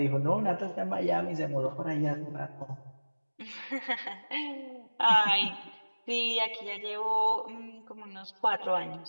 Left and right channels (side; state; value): both; inverted; correlation -1.00